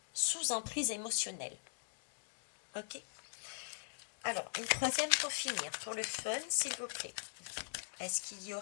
sous emprise émotionnelle. Ok? Alors, une troisième pour finir, pour le fun, s'il vous plaît. Est-ce qu'il y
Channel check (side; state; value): right; silent; digital silence